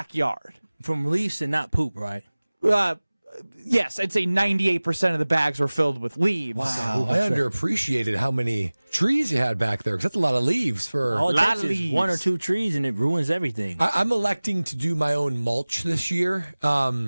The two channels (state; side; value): inverted; both; correlation -1.00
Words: From leaves and not poop, right? Yes, I'd say 98% of the bags were filled with leaves. Wow, I underappreciated how many trees you had back there, because that's a lot of leaves for all it takes is 1 or 2 trees, and it ruins everything. I'm electing to do my own mulch this year.